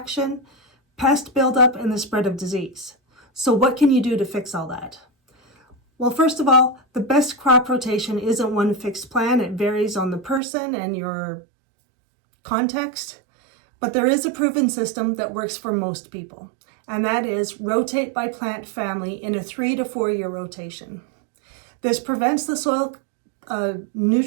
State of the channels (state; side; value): drops out; left; at 10.4 s